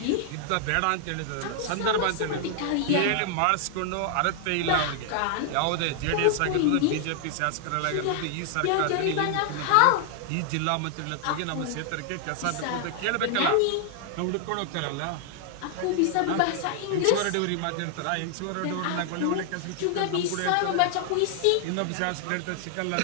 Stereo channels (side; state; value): both; different; correlation 0.00